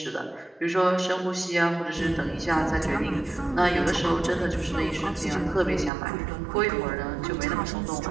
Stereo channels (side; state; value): left; drops out; at 5.9 s